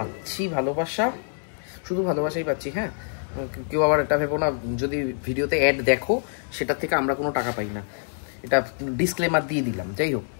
ভালোবাসা, শুধু ভালোবাসাই পাচ্ছি। হ্যাঁ, কেউ আবার এটা ভেবো না যদি ভিডিওতে অ্যাড দেখো সেটার থেকে আমরা কোনো টাকা পাই না, এটা ডিসক্লেমার দিয়ে দিলাম। যাই হোক,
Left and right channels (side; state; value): right; silent; 61 dB below the other